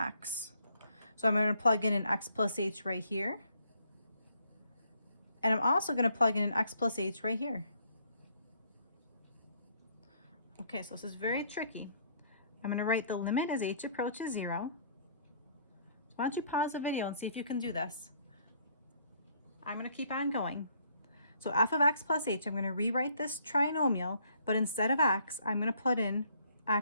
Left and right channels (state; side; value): inverted; both; correlation -0.65